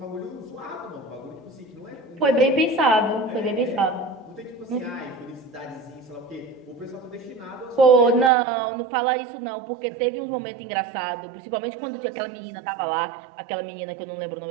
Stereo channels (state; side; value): drops out; left; at 8.3 s